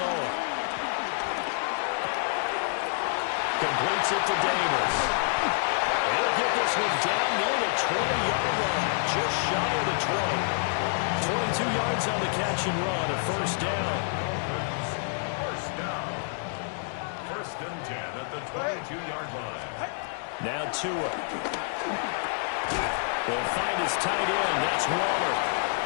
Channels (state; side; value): silent; right; digital silence